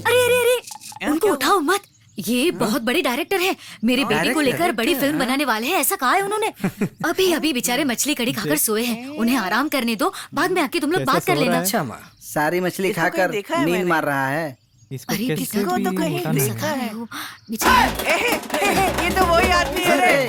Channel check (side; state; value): both; identical; correlation 1.00